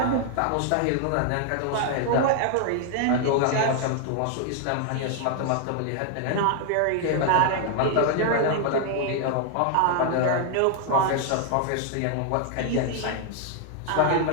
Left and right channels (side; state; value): both; different; correlation 0.00